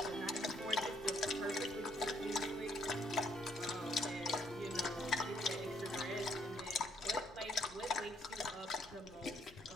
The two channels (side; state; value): left; noise; rumble, 25 dB below the sound